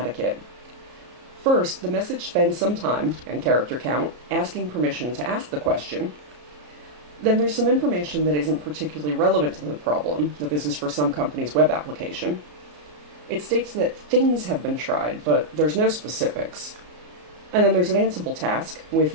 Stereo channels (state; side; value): late; left; 33 ms